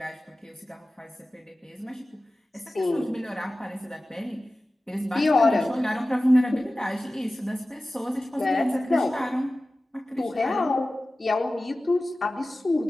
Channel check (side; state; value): both; normal; correlation 0.96